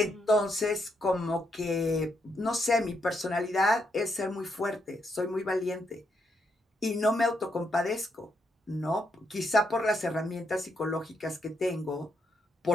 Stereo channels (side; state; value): both; normal; correlation 0.78